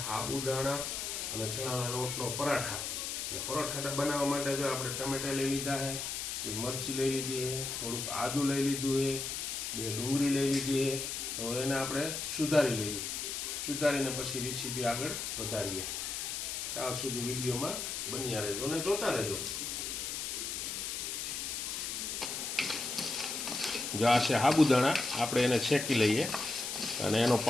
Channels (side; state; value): left; noise; hiss, 3 dB below the sound